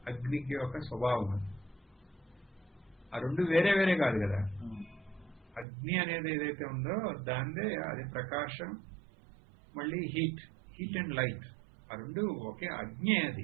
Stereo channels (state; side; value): drops out; left; at 5.7 s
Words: అగ్నికి ఒక స్వభావం అది. ఆ రెండు వేరే వేరే కాదు కదా. అగ్ని అనేది ఏదైతే ఉందో దానిదే అది ప్రకాశం, మళ్ళీ హీట్ అండ్ లైట్, ఆ రెండు ఒకే అగ్ని.